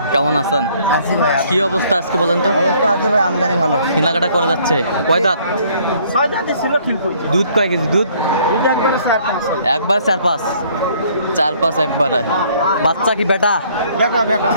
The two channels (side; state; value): both; inverted; correlation -0.61